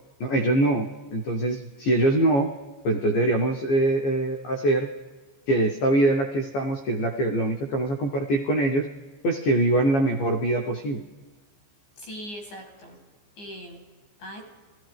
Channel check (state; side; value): late; right; 15 ms